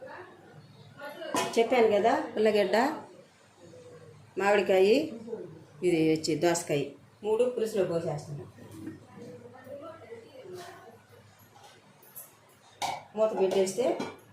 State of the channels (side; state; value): both; identical; correlation 1.00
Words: చెప్పాను కదా, ఉల్లగడ్డ, మామిడికాయ, ఇది వచ్చి దోసకాయ 3 పులుసులో పోసేస్తున్నాను. మూత పెట్టేస్తే